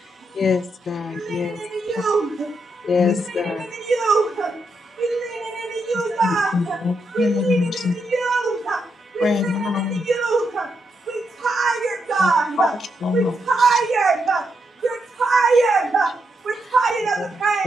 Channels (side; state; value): both; normal; correlation 0.81